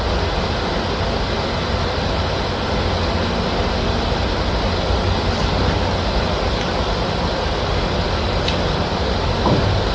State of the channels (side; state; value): both; identical; correlation 1.00